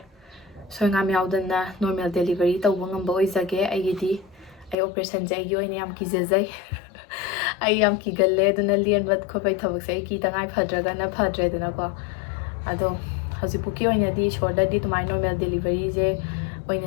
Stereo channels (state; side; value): drops out; right; at 4.8 s